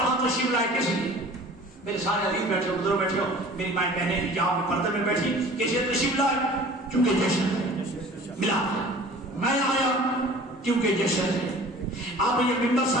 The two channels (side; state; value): both; normal; correlation 0.46